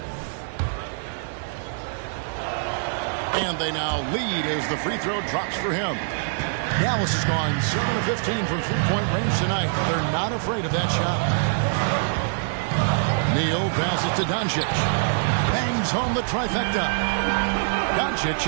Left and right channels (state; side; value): silent; left; digital silence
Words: And they now lead as the free throw drops for him. Dallas has gone 7 of 15 from three-point range tonight. They're not afraid of that shot. Neal passes to Doncic. Bangs home the trifecta. Doncic